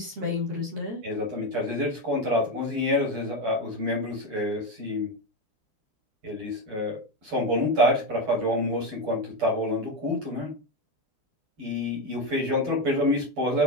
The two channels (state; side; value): late; left; 9.3 ms